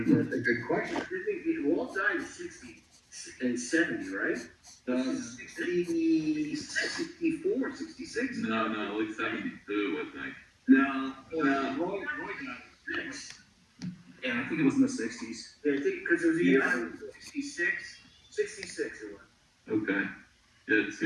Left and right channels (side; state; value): both; identical; correlation 1.00